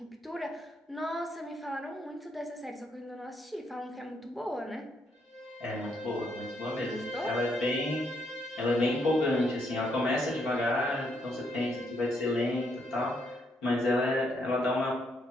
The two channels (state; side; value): normal; both; correlation 0.75